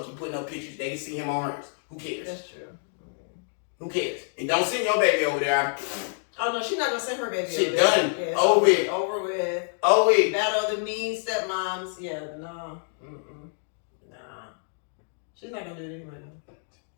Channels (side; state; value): right; silent; digital silence